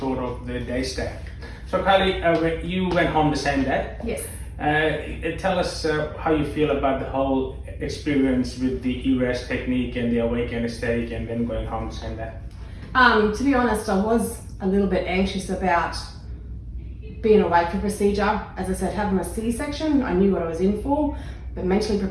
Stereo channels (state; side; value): identical; both; correlation 1.00